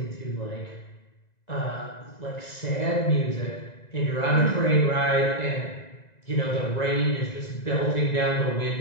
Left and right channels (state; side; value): late; right; 2.0 ms